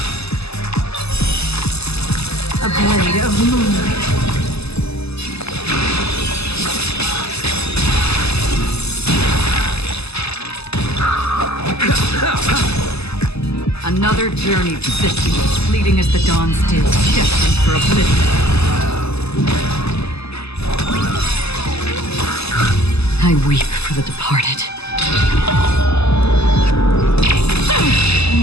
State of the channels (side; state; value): right; late; 0.79 ms